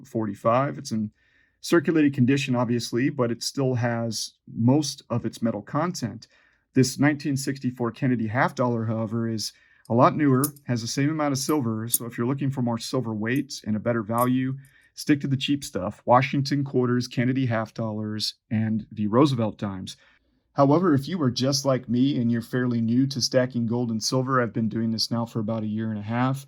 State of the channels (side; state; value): both; identical; correlation 1.00